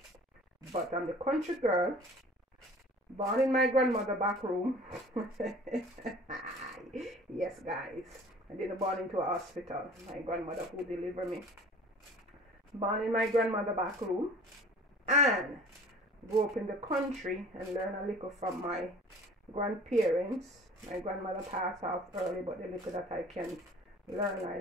but I'm the country girl, born in my grandmother back room. Yes guys, I didn't born into a hospital. My grandmother who delivered me, born in my grandmother back room, and grew up in the country and learn a little from my grandparents. My grandmother passed off early, but the little that I can learn, I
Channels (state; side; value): normal; both; correlation 0.47